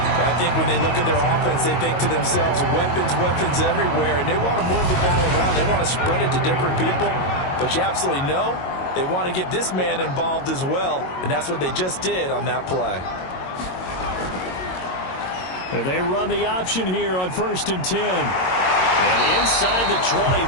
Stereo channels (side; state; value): right; late; 22 ms